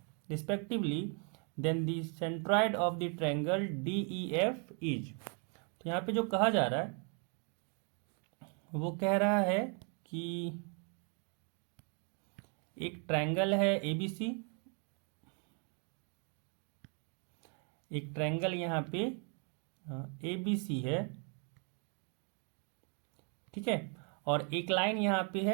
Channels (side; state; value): left; quieter; 38.9 dB